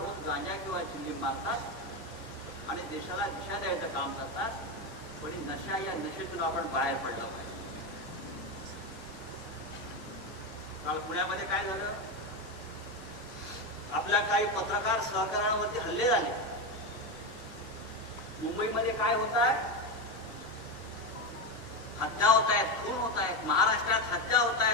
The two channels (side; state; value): both; normal; correlation 0.14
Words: गांजा किंवा चिलीम मारतात आणि देशाला दिशा द्यायचं काम करतात, पण नशा या नशेतून आपण बाहेर पडलं पाहिजे. काल पुण्यामध्ये काय झालं, आपल्या काही पत्रकार सहकाऱ्यांवरती हल्ले झाले. मुंबईमध्ये काय होत आहे, हत्या होत आहेत, खून होत आहेत. महाराष्ट्रात हत्या होत